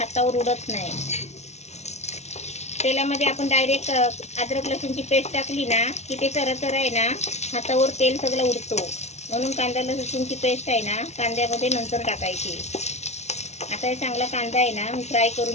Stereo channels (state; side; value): late; right; 0.32 ms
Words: उडत नाही. तेलामध्ये आपण डायरेक्ट अद्रक लसूणची पेस्ट टाकली ना की ते चरचर आहे ना हातावर तेल सगळं उडतो. म्हणून कांदा लसूणची पेस्ट आहे ना कांद्यामध्ये नंतर टाकायची. आता हे चांगला कांदा आहे ना मी फ्राय